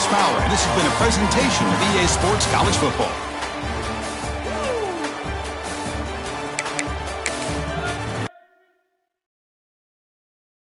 Fowler. And this has been a presentation of EA Sports College Football.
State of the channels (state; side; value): identical; both; correlation 1.00